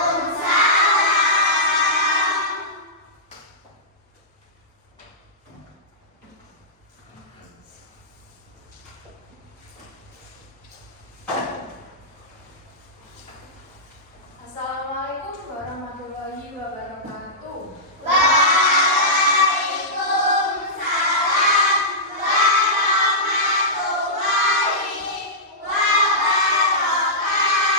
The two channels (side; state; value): both; normal; correlation -0.15